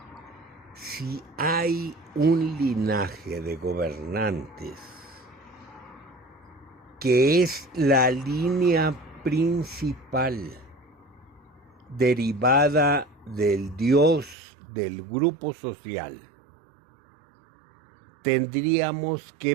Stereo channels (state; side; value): drops out; left; at 14.4 s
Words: Si hay un linaje de gobernantes que es la línea principal derivada del Dios del grupo social, tendríamos que